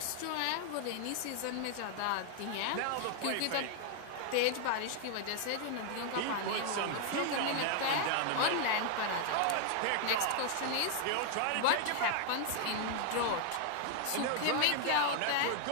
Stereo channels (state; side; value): different; both; correlation 0.00